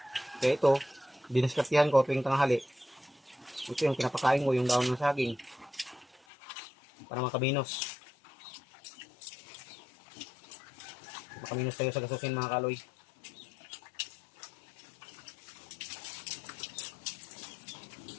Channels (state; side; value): drops out; right; at 6.2 s